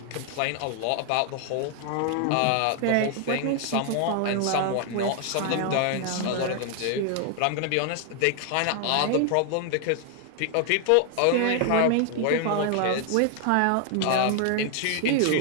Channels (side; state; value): both; different; correlation 0.00